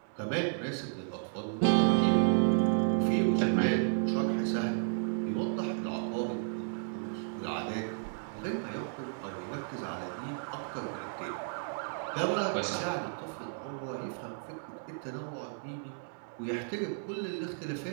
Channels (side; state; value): left; silent; 56 dB below the other